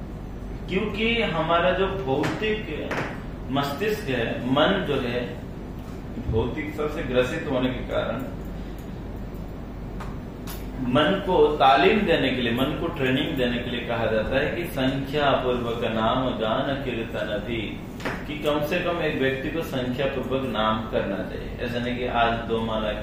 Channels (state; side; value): identical; both; correlation 1.00